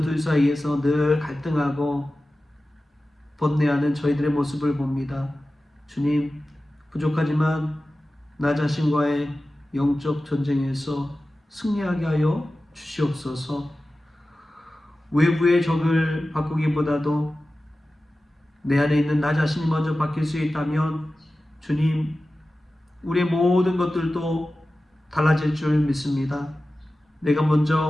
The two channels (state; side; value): normal; both; correlation 0.95